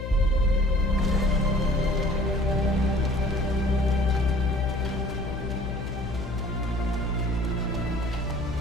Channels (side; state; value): left; noise; hum, 6 dB below the sound